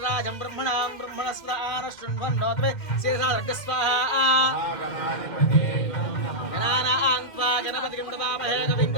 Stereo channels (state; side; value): late; right; 2.1 ms